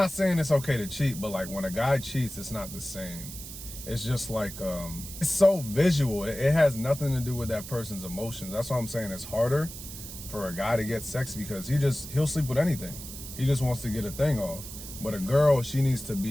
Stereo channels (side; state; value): right; noise; hiss, 11 dB below the sound